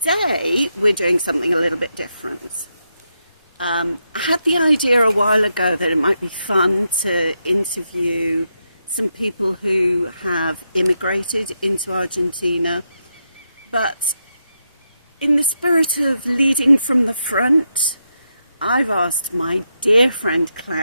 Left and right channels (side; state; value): both; inverted; correlation -0.84